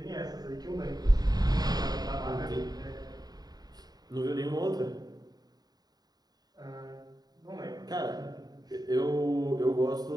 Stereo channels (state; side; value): late; left; 0.19 ms